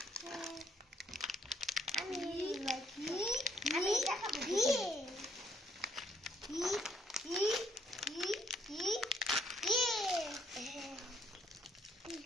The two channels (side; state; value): both; normal; correlation 0.68